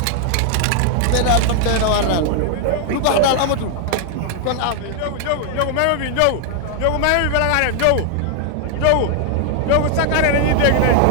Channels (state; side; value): different; both; correlation 0.00